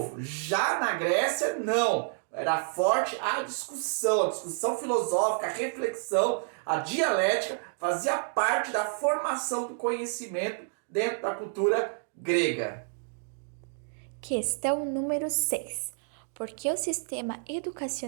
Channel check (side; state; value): left; silent; digital silence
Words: Já na Grécia, não. Era forte a discussão filosófica, a reflexão, a dialética fazia parte da formação do conhecimento dentro da cultura grega. Questão número 6. Por que o sistema